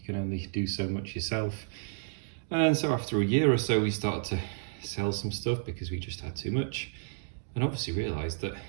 can only do so much yourself. And so after a year or so, we started to sell some stuff because we just had too much. And obviously realised that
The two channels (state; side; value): silent; left; digital silence